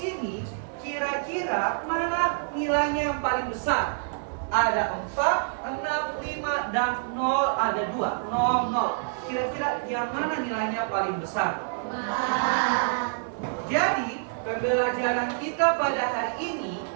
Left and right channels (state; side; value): silent; left; 55 dB below the other